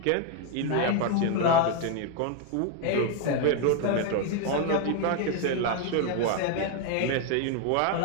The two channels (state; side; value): different; both; correlation 0.01